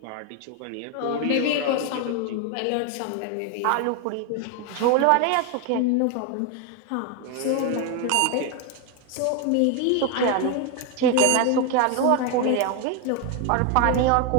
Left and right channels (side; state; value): both; different; correlation 0.02